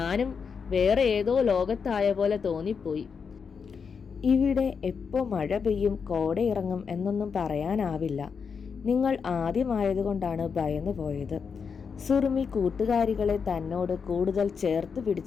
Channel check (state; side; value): quieter; right; 6.0 dB